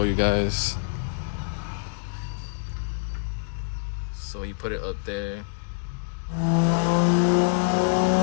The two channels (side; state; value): right; silent; digital silence